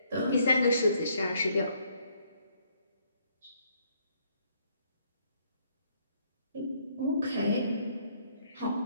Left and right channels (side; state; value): both; inverted; correlation -0.68